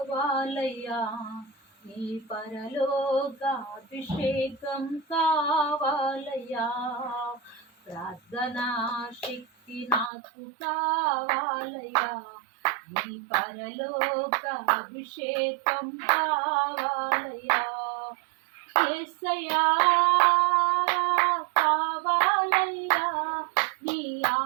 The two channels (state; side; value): drops out; left; at 10.1 s